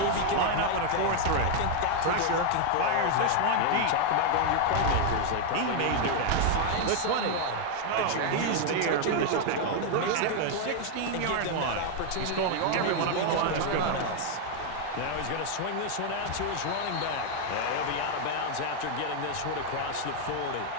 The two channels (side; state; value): both; different; correlation 0.00